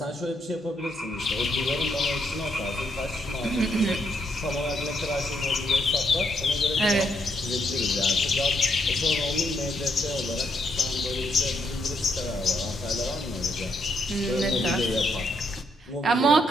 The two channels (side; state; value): both; normal; correlation 0.75